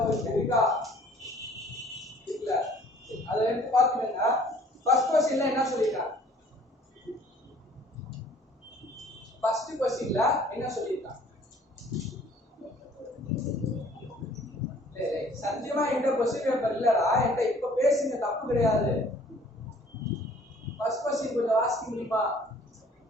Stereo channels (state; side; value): normal; both; correlation 0.55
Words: இருக்கா? இல்ல. அதை எடுத்து பாத்துக்கங்க. ஃபர்ஸ்ட் क्वेश्चनல என்ன சொல்லிருக்காங்க? ஃபர்ஸ்ட் क्वेश्चनல என்ன சொல்லிருக்காங்க? சத்தியமா என்கிட்ட क्वेश्चन பேப்பர் இல்லடா. என்கிட்ட இப்ப பேசுங்க, தப்பு கிடையாது. ஃபர்ஸ்ட் क्वेश्चन கொஞ்சம் வாசிக்க முடியுமா?